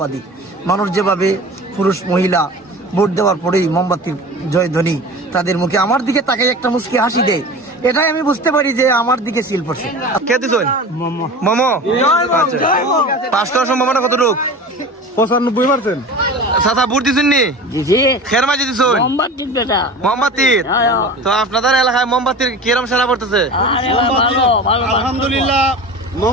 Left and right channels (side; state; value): both; normal; correlation 0.35